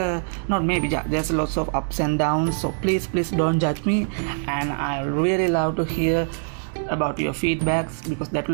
there's lots of ups and downs, so please don't judge me, and I really love to hear about your feedbacks, because that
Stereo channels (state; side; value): silent; left; digital silence